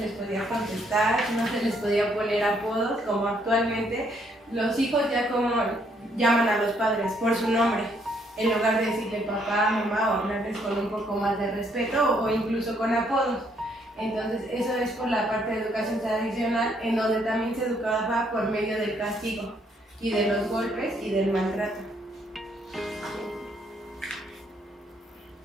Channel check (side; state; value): both; normal; correlation 0.70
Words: podía contestar, no se les podía poner apodos, como actualmente los hijos ya como llaman a los padres por su nombre, en lugar de decirle papá, mamá, o hablarles con un poco más de respeto o incluso con apodos. Entonces, eso es por la parte de educación tradicional, en donde también se educaba por medio del castigo y de los golpes y del maltrato.